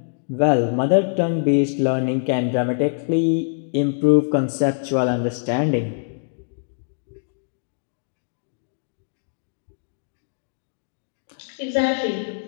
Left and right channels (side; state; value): right; silent; digital silence